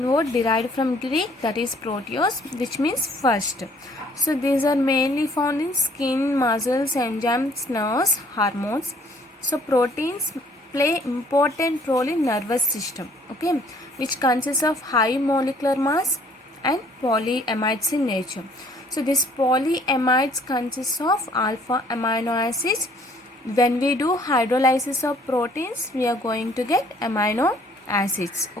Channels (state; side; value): normal; both; correlation 0.59